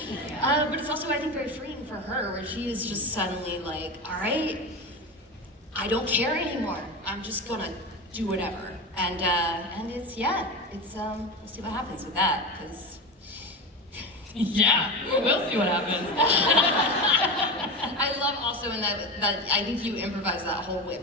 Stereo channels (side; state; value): both; normal; correlation 0.23